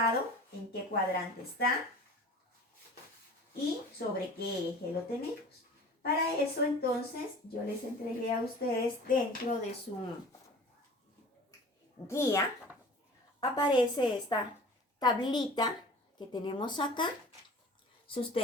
en qué cuadrante está y sobre qué eje lo tenemos? Para eso entonces yo les entregué a ustedes dentro de su guía, aparece esta tablita que tenemos acá. Si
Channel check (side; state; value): both; normal; correlation 0.43